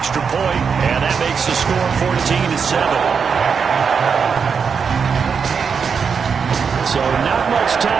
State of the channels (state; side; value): quieter; left; 6.1 dB